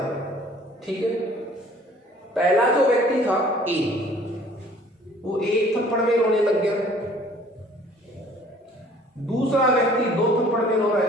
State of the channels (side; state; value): both; normal; correlation 0.54